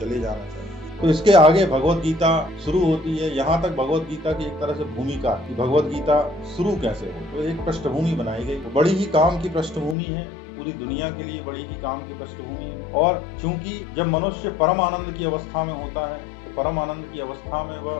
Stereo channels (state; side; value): drops out; right; at 10.0 s